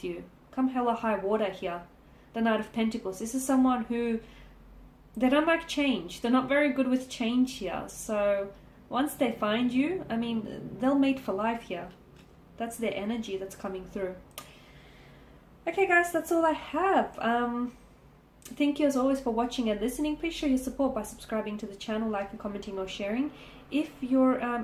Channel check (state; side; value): identical; both; correlation 1.00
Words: you. Come hell or high water here. The Knight of Pentacles. This is someone who, they don't like change. They're not very good with change here. So once they find you, I mean, they'll mate for life here. That's their energy that's coming through. Okay guys, that's all I have. Thank you as always for watching and listening. Please show your support by subscribing to the channel, liking, commenting or sharing. If you're